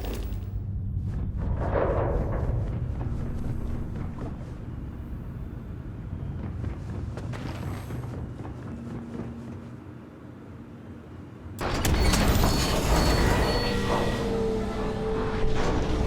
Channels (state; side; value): identical; both; correlation 1.00